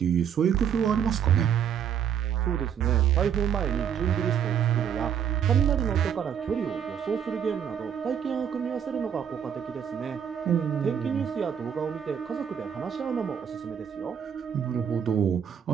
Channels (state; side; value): quieter; left; 8.4 dB